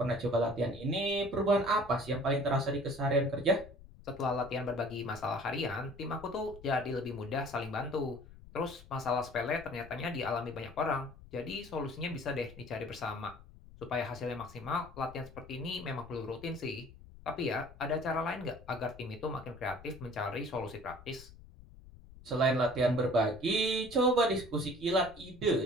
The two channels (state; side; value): noise; left; rumble, 19 dB below the sound